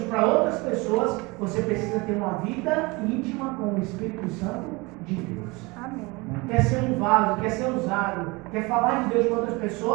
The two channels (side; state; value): left; quieter; 25.1 dB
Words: para outras pessoas, você precisa ter uma vida íntima com o Espírito Santo de Deus. Amém. Quer ser um vaso, quer ser usado, quer falar de Deus para outras